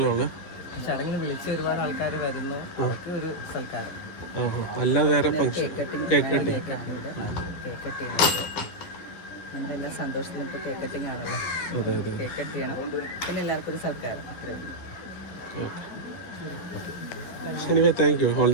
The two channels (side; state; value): right; late; 11 ms